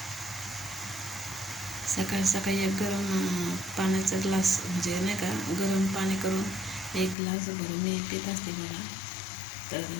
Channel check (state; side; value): drops out; right; at 7.2 s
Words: सकाळी सकाळी एक गरम पाण्याचा ग्लास, म्हणजे नाही का, गरम पाणी करून 1 ग्लास भरून मी पित असते बघा. तर